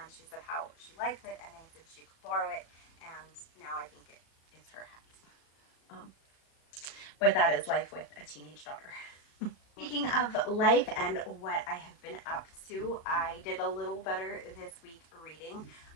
she said how she liked it, and I said she could borrow it, and now I think it's her hat. But that is life with a teenage daughter. Speaking of life and what I have been up to, I did a little better this week reading,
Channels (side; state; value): right; late; 37 ms